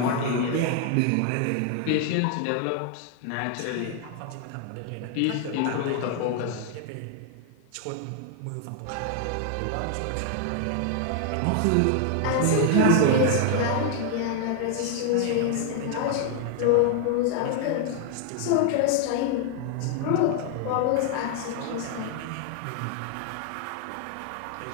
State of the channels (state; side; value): different; both; correlation 0.00